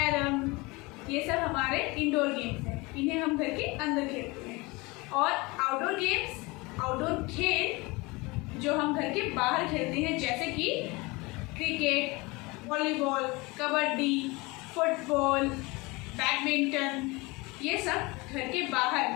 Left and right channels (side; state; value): right; quieter; 24.5 dB